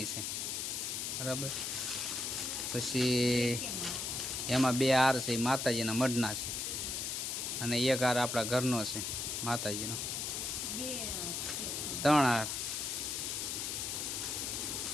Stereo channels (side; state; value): left; noise; hiss, 2 dB below the sound